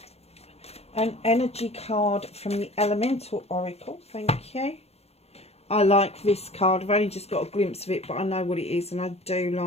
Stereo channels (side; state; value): right; late; 0.30 ms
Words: an energy card from the Elemental Oracle. Thank you. I like this card. I've only just got a glimpse of it, but I know what it is and I do